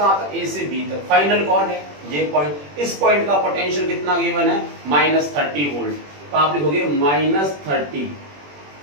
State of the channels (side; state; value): left; late; 21 ms